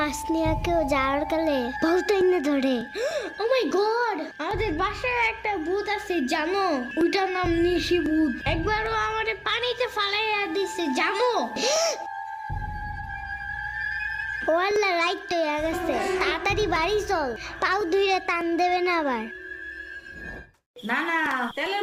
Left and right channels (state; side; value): identical; both; correlation 1.00